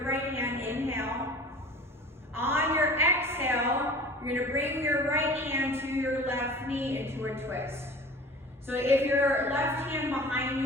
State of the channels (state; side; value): normal; both; correlation 0.41